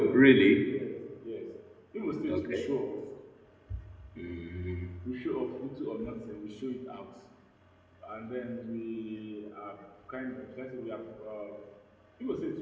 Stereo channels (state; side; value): identical; both; correlation 1.00